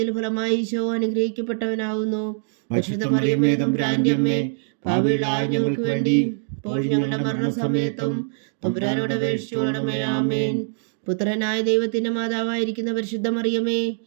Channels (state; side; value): silent; left; digital silence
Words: ഫലമായി ഈശോ അനുഗ്രഹിക്കപ്പെട്ടവനാവുന്നു. പരിശുദ്ധ മറിയമേ തമ്പുരാന്റെ അമ്മേ, പാപികളായ ഞങ്ങൾക്ക് വേണ്ടി ഇപ്പോഴും ഞങ്ങളുടെ മരണസമയത്തും തമ്പുരാനോട് അപേക്ഷിച്ചുകൊള്ളണമേ. ആമേൻ. പുത്രനായ ദൈവത്തിന്റെ മാതാവായിരിക്കുന്ന പരിശുദ്ധ മറിയമേ,